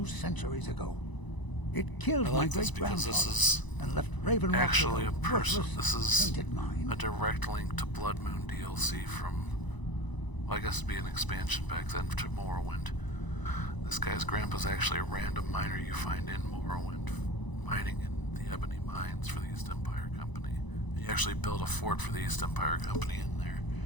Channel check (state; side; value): late; right; 1.0 ms